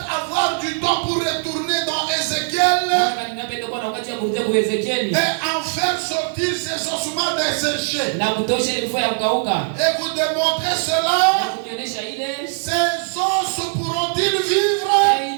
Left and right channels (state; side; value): silent; left; digital silence